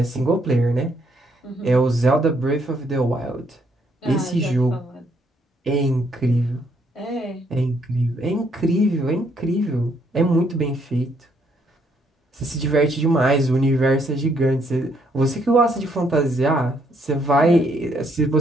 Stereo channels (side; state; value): both; normal; correlation 0.71